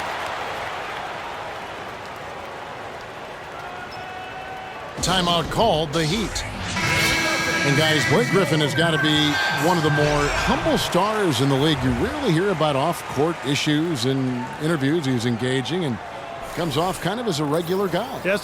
Timeout called, the Heat. And guys, Blake Griffin has got to be one of the more humble stars in the league. You rarely hear about off-court issues and interviews. He's engaging and comes off kind of as a regular guy.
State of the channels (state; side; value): identical; both; correlation 1.00